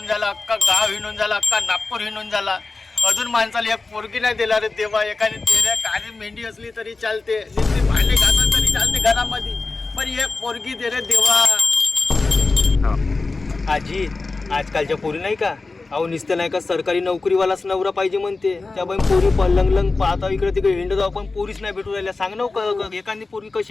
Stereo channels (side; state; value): right; quieter; 3.7 dB